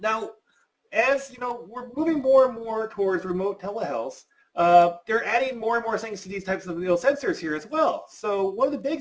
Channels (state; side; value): identical; both; correlation 1.00